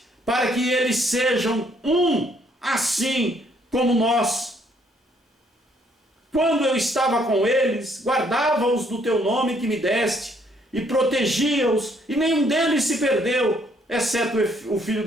para que eles sejam um, assim como nós. Quando eu estava com eles, guardava-os do teu nome que me deste, e protegia-os, e nenhum deles se perdeu, exceto o filho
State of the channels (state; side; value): normal; both; correlation 0.67